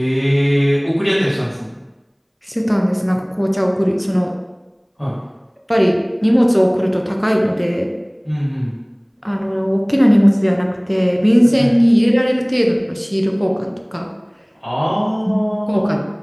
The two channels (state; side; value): identical; both; correlation 1.00